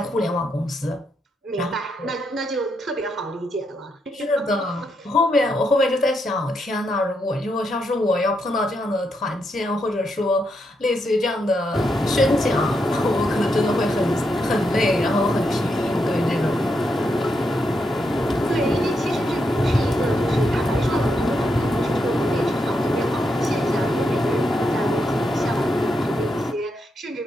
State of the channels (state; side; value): normal; both; correlation 0.81